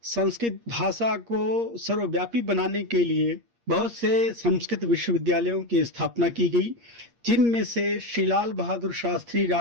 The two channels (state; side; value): late; left; 8.5 ms